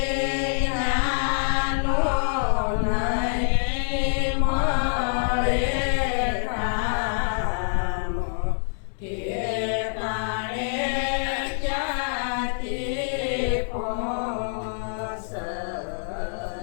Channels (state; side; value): silent; right; 61 dB below the other